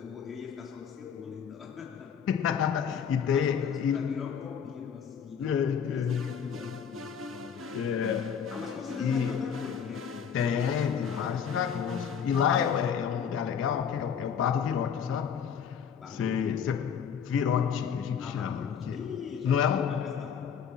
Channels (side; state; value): right; quieter; 7.4 dB